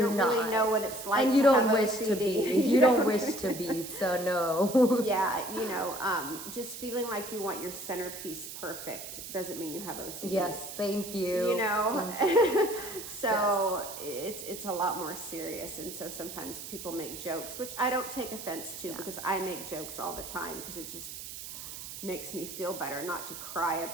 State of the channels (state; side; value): noise; right; hiss, 10 dB below the sound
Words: don't not. really know what it's like And you to don't have wish OCD. to be. You don't wish to be, so no. Yeah, just feeling like you want your centerpiece perfect doesn't mean you have OCD. Yes, thank you. So it's a lot more serious. And so sometimes people make jokes, which I don't take offense to, because I make jokes all the time, because it just makes me feel better not to cry